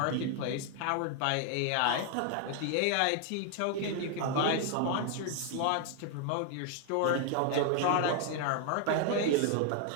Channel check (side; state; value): both; different; correlation 0.00